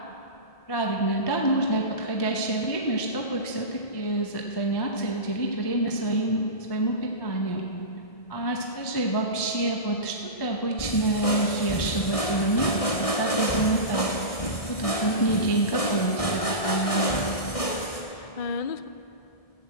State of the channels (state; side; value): late; right; 1.7 ms